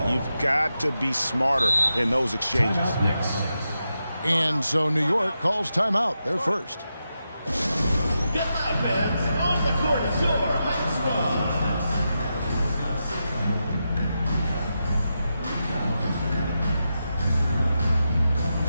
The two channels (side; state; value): both; inverted; correlation -0.88